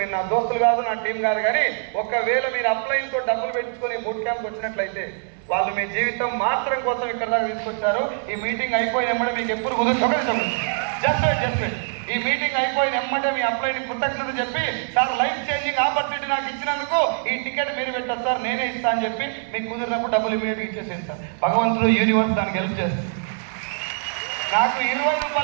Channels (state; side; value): silent; left; digital silence